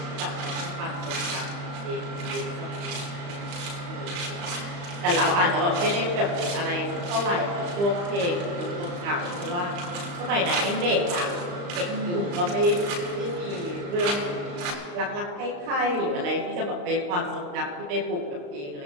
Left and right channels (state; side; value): late; left; 35 ms